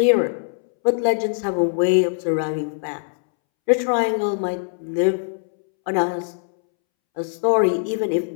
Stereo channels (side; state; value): right; silent; 65 dB below the other